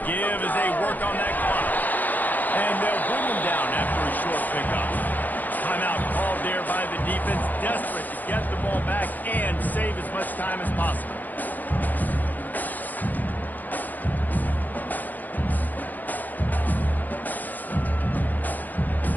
give as they work on that clock. And they'll bring him down after a short pickup. Timeout called there by the defense, desperate to get the ball back and save as much time as possible.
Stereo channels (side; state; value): right; late; 0.084 ms